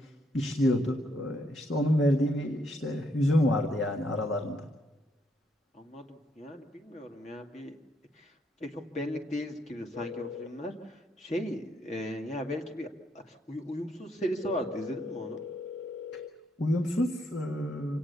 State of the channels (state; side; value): normal; both; correlation 0.74